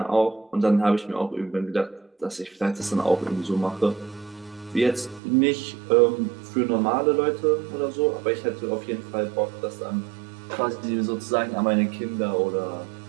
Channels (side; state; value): left; drops out; at 5.2 s